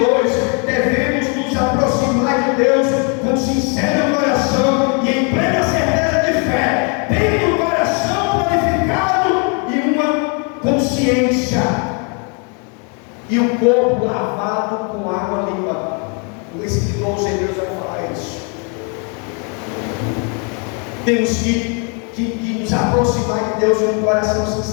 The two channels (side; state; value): right; quieter; 36.5 dB